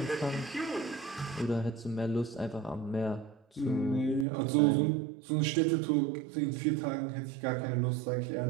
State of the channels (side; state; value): left; drops out; at 4.2 s